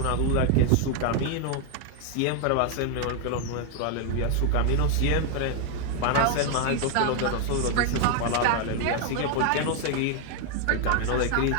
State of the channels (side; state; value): both; different; correlation 0.01